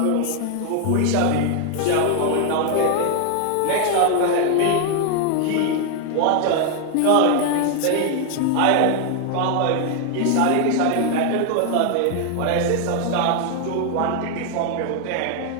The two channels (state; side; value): different; both; correlation 0.00